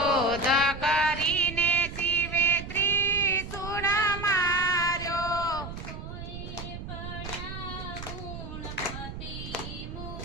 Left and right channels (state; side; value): noise; right; rumble, 9 dB below the sound